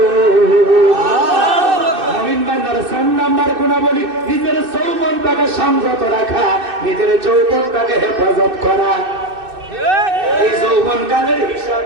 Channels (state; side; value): late; left; 2.6 ms